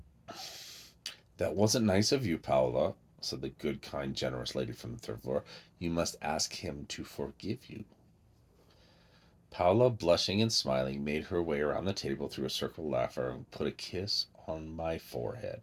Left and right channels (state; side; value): identical; both; correlation 1.00